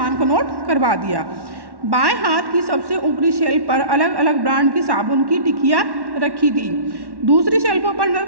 को नोट करवा दिया। बाएं हाथ की सबसे ऊपरी शेल्फ पर अलग अलग ब्रांड की साबुन की टिकियाँ रखी थी। दूसरी शेल्फों पर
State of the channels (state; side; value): late; left; 1.1 ms